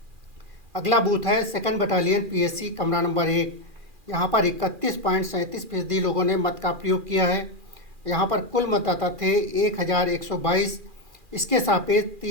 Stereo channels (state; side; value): late; left; 2.4 ms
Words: अगला बूथ है 2nd बटालियन पीएससी कमरा नंबर 1। यहाँ पर 31.37% लोगों ने मत का प्रयोग किया है। यहाँ पर कुल मतदाता थे 1122। इसके सापेक्ष